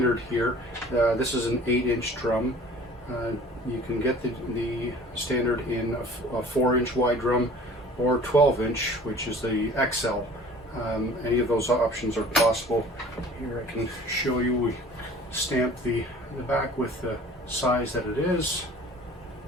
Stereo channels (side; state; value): both; normal; correlation 0.47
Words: here. This is an 8-inch drum. You can get the standard in a 4-inch wide drum or 12-inch, which is the XL. Any of those options are possible. Here I can show you, we stamp the back with the size that it is.